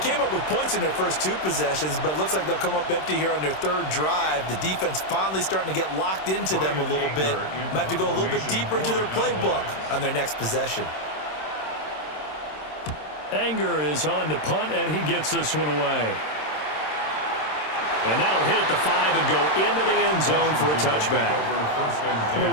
up with points in their first 2 possessions, but it looks like they'll come up empty here on their 3rd drive. The defense finally starting to get locked into them a little bit. Might have to go a little bit deeper into their playbook on their next possession. Anger is on to punt, and he gets this one away. And that'll hit at the 5 and go into the end zone for a touchback.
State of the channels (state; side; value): late; right; 26 ms